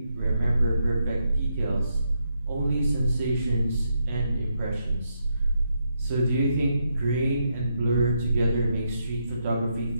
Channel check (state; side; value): inverted; both; correlation -0.80